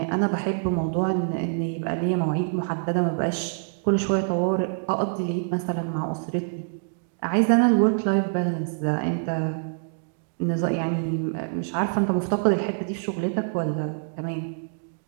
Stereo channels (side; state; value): left; silent; digital silence